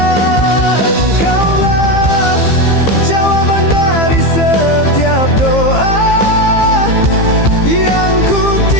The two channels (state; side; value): late; right; 15 ms